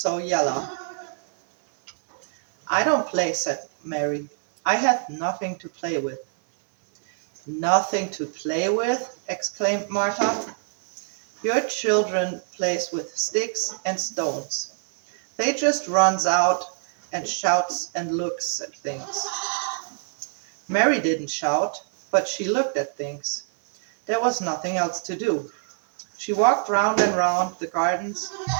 yellow." "I don't play," said Mary. "I have nothing to play with." "Nothing to play with?" exclaimed Martha. "Your children plays with sticks and stones. They just runs out and shouts and looks at things." Mary didn't shout, but she looked at things. There was nothing else to do. She walked round and round the gardens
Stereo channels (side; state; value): left; silent; 62 dB below the other